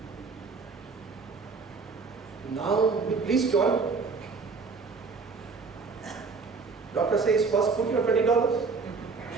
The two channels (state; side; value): quieter; left; 4.7 dB